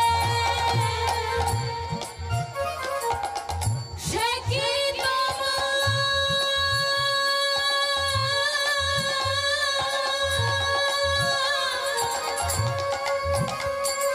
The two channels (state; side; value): identical; both; correlation 1.00